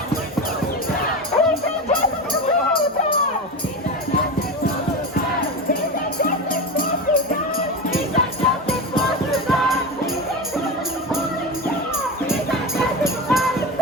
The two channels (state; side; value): normal; both; correlation 0.22